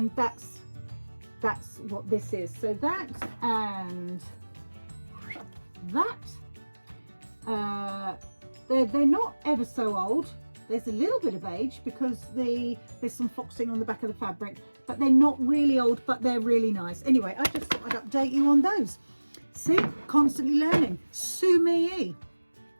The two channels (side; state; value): both; inverted; correlation -1.00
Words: that's what this is. So that and that, they're not ever so old. There's a little bit of age because there's some foxing on the back of the fabric, but they're not really old, but they're really nice. Anyway, I just thought I'd update you on those. See, constantly learning. Sumi.